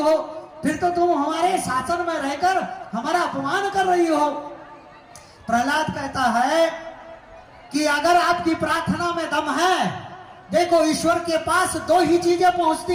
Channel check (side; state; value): both; identical; correlation 1.00